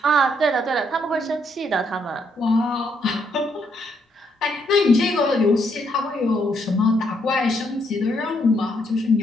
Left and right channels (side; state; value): both; normal; correlation 0.74